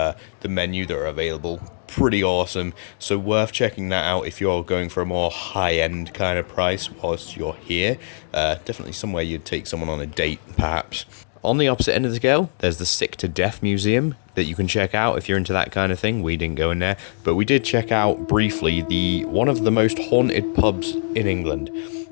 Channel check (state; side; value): silent; right; digital silence